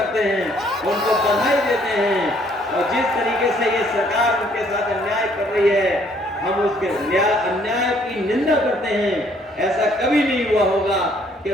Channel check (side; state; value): both; normal; correlation 0.64